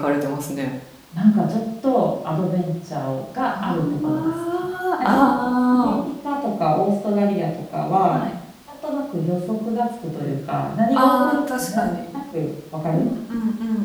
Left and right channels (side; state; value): both; identical; correlation 1.00